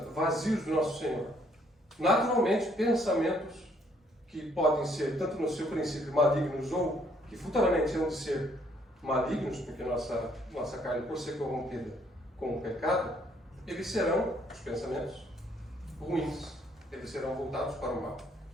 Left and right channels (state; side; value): normal; both; correlation 0.67